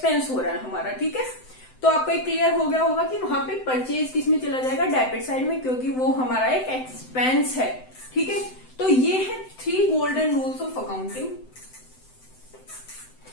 हो रहा है हमारा, ठीक है। तो आपको एक क्लियर हो गया होगा कि वहां पे परचेज किस में चला जाएगा, डेबिट साइड में, क्योंकि वो हमारा एक एक्सपेंस है, ठीक है। तो ये है 3 गोल्डन रूल्स ऑफ अकाउंटिंग,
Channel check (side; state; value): right; late; 7.8 ms